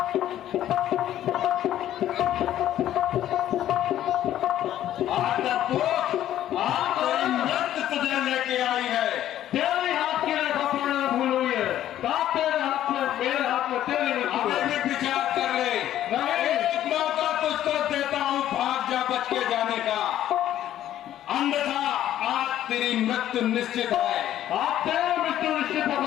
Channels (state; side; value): quieter; right; 12.1 dB